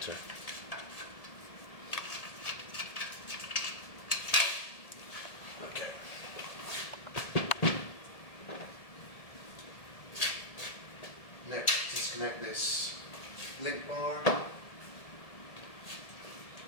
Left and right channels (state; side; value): late; right; 1.7 ms